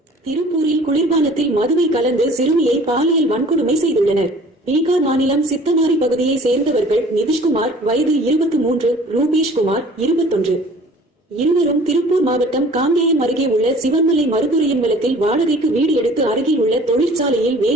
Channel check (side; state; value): both; normal; correlation 0.49